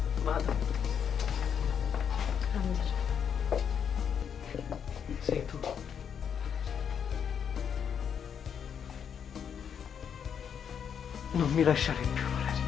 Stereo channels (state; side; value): quieter; right; 7.8 dB